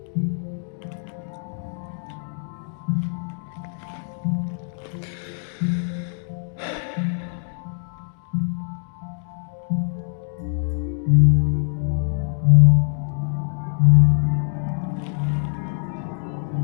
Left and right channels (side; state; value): right; silent; 56 dB below the other